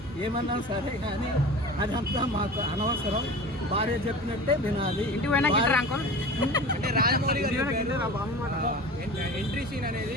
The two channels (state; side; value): normal; both; correlation 0.36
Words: ఏమన్నా సరే కానీ అదంతా మాకు అనవసరం. భార్య చెప్పినట్టే వినాలి. అంటే రాజమౌళి గారు ఎంట్రీ సీన్ అనేది